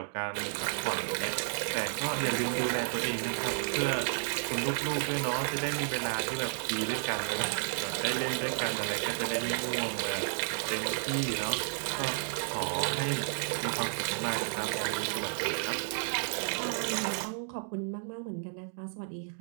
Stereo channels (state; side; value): silent; left; digital silence